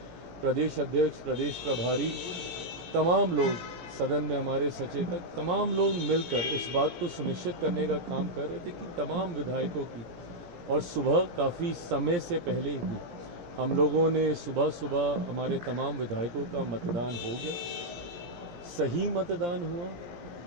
प्रदेश अध्यक्ष, प्रदेश प्रभारी, तमाम लोग सदन में, हमारे सचेतक, तमाम लोग मिलकर इस बात को सुनिश्चित करने का काम कर रहे थे कि तमाम विधायकों की, और सुबह काफ़ी समय से पहले ही हम लोगों ने सुबह सुबह हमारे तमाम विधायकों का मतदान हो गया, सही मतदान हुआ।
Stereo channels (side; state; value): left; late; 17 ms